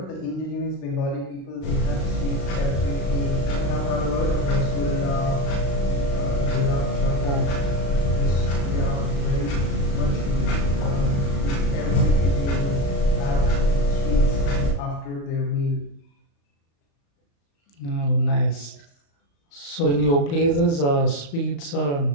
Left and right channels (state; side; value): late; right; 35 ms